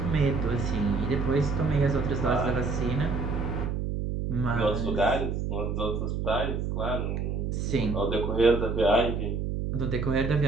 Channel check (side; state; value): right; noise; hum, 2 dB below the sound